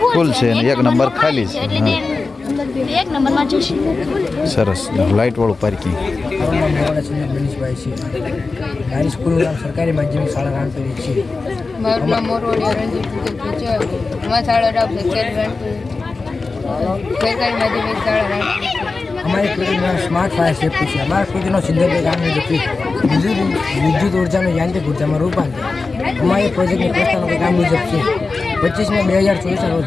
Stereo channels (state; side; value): quieter; right; 3.9 dB